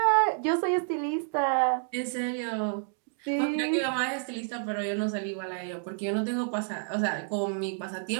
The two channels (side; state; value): left; silent; digital silence